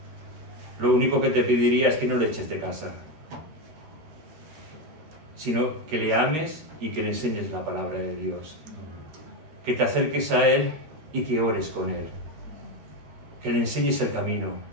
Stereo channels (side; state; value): left; late; 13 ms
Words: Lo único que te pediría es que no le eches de casa, sino que le ames y que le enseñes la palabra de Dios. Que te acerques a Él y que ores con Él. Que le enseñes el camino,